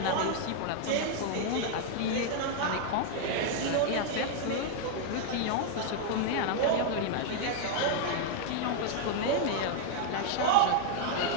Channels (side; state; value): both; different; correlation 0.00